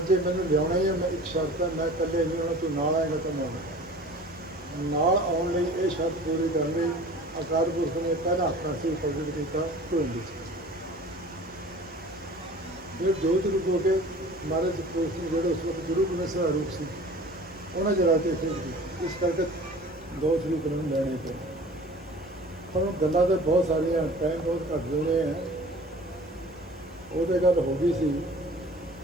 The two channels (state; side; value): normal; both; correlation 0.43